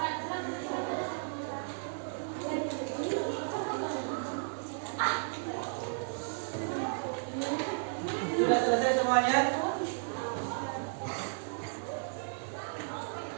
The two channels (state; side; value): silent; left; digital silence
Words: Sudah selesai semuanya?